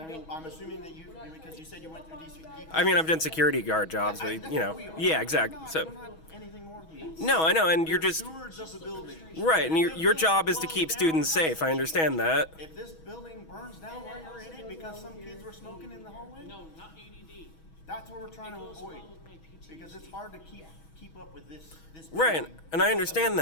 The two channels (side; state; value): right; late; 6.2 ms